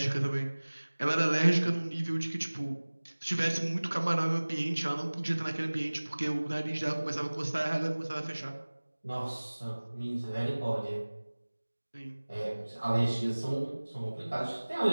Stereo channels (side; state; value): both; inverted; correlation -1.00